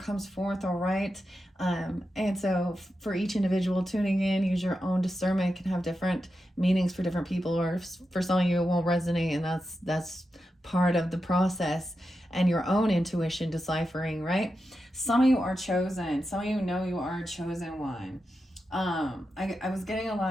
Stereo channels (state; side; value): normal; both; correlation 0.89